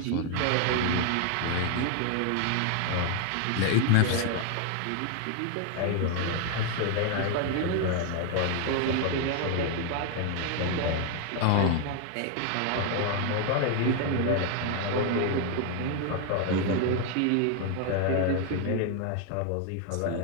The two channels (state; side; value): different; both; correlation 0.01